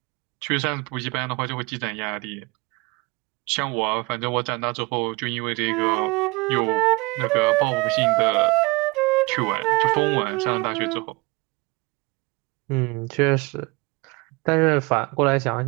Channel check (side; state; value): left; quieter; 25.3 dB